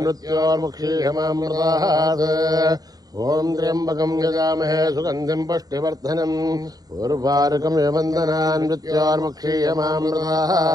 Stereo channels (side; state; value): left; late; 0.18 ms